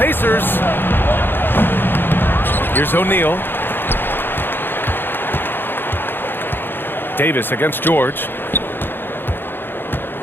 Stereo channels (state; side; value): late; right; 0.10 ms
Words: Here's O'Neal. Davis against George.